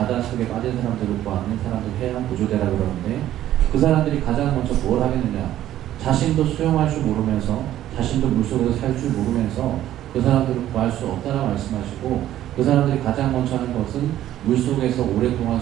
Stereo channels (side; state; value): left; quieter; 12.7 dB